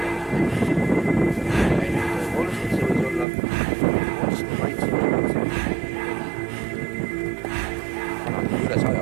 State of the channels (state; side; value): drops out; left; at 3.2 s